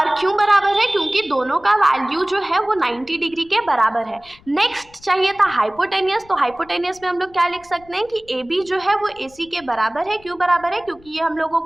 क्यों बराबर है, क्योंकि दोनों का वैल्यू जो है वो 90 डिग्री के बराबर है। नेक्स्ट चाहिए था हाइपोटेनियस। तो हाइपोटेनियस में हम लोग क्या लिख सकते हैं कि AB जो है वो AC के बराबर है। क्यों बराबर है, क्योंकि ये हम लोगों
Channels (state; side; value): noise; left; rumble, 26 dB below the sound